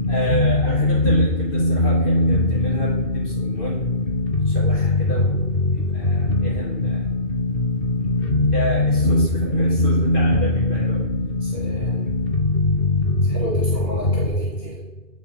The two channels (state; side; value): late; right; 2.4 ms